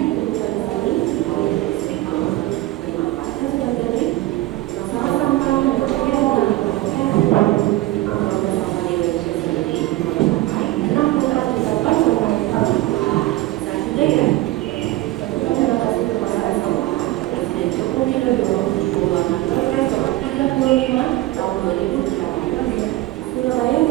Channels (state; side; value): quieter; left; 17.4 dB